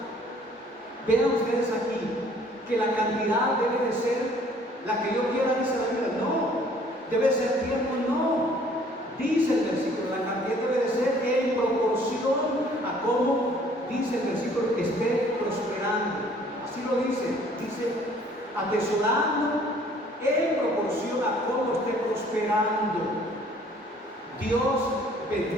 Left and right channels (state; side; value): normal; both; correlation 0.57